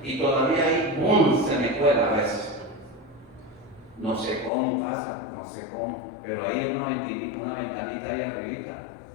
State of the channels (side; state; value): right; drops out; at 4.5 s